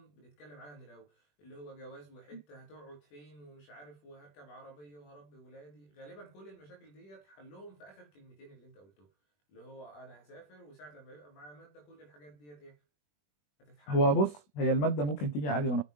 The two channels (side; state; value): right; late; 20 ms